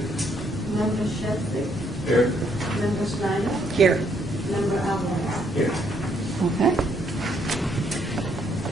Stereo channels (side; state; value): both; normal; correlation 0.70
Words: Member Sheffield? Here. Member Snyder? Here. Member Alvarez? Here. Okay.